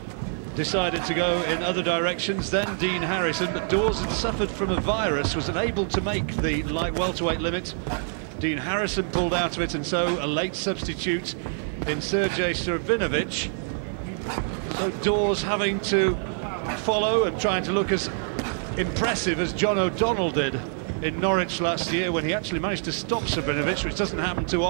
decided to go in other directions, then Dean Harrison, but Daws had suffered from a virus, was unable to make the light welterweight limit. Dean Harrison pulled out of it, and so a late substitute in Sergejs Savrinovics. So Daws having to follow and trying to look as impressive as John O'Donnell did in Norwich last year, when he actually managed to stop Savrinovics, which doesn't happen too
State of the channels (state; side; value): silent; left; digital silence